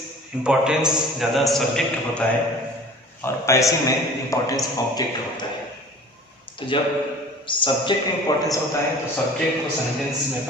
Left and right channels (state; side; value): normal; both; correlation 0.44